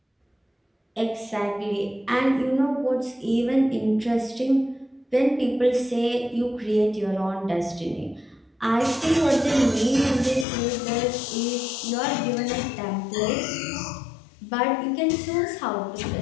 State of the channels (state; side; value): drops out; right; at 10.5 s